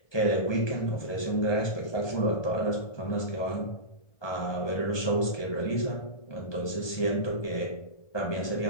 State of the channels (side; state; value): right; late; 1.2 ms